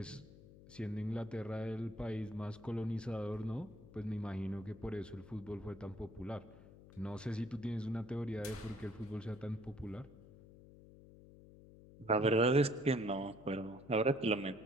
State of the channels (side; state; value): left; noise; hum, 19 dB below the sound